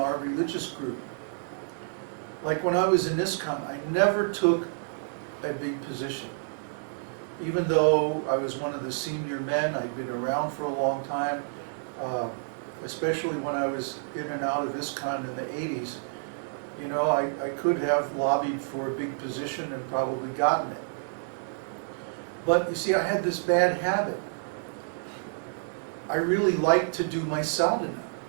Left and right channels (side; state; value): left; silent; 59 dB below the other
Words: religious group. Like when I was in ISKCON, I never took a big position. even though I was one of the senior men, I'd been around for a long time, especially when I was in and out of ISKCON in the 80s, you know, I could have lobbied for a big position and probably gotten it. But you see, I had this bad habit. I really liked to do my sadhana.